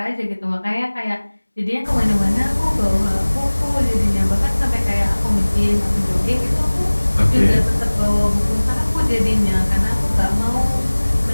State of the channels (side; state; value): both; inverted; correlation -1.00